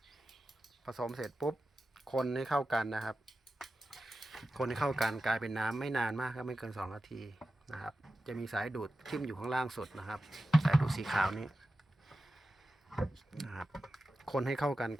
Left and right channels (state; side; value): normal; both; correlation 0.93